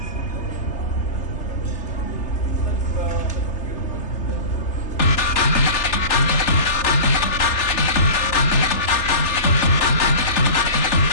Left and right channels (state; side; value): late; right; 3.4 ms